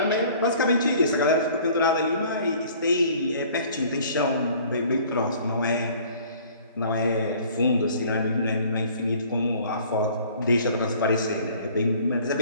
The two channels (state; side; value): inverted; both; correlation -0.52